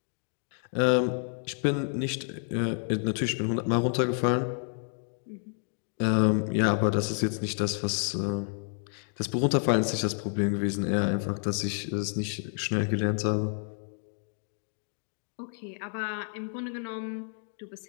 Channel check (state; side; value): silent; right; 58 dB below the other